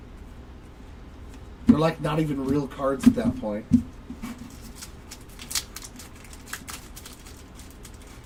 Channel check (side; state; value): both; identical; correlation 1.00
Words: They're like not even real cards at that point.